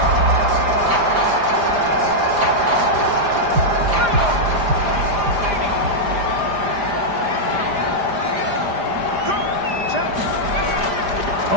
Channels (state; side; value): late; left; 4.9 ms